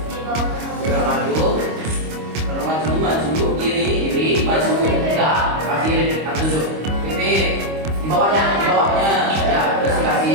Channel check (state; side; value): late; left; 25 ms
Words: Gerak maju. Maju, kiri, maju. Enggak, kasih repeat until dulu. Repeat. Di bawahnya, ya, terus